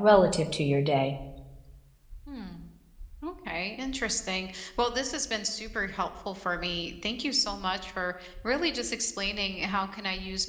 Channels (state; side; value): identical; both; correlation 1.00